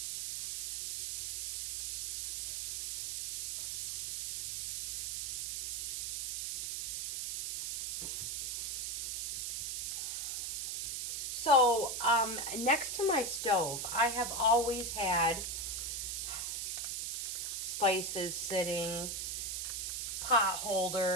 So, next to my stove, I have always had spices sitting, pot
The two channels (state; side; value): noise; right; hiss, 3 dB below the sound